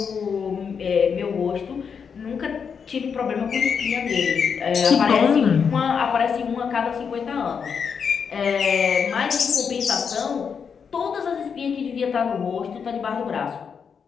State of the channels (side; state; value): right; quieter; 6.5 dB